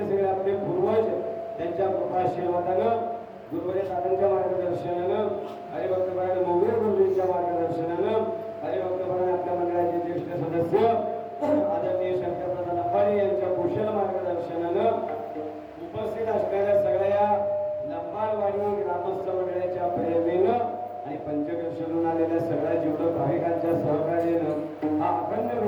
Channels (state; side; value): identical; both; correlation 1.00